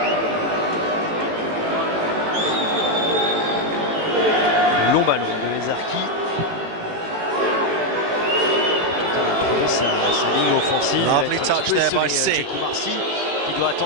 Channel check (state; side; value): late; left; 18 ms